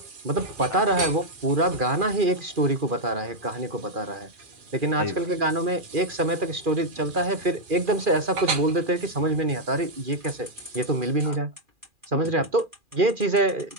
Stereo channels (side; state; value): left; late; 2.4 ms